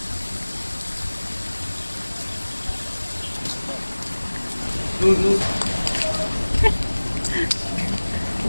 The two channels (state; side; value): inverted; both; correlation -1.00